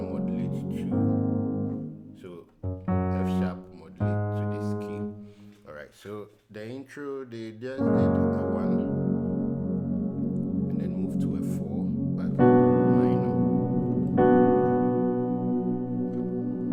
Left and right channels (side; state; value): both; identical; correlation 1.00